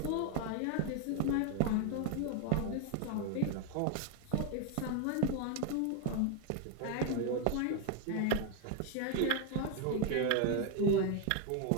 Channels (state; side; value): different; both; correlation 0.01